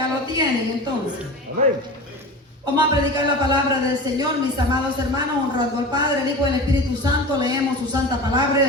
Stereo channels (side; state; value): both; normal; correlation 0.31